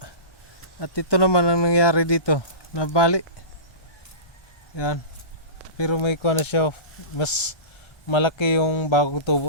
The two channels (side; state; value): right; late; 1.3 ms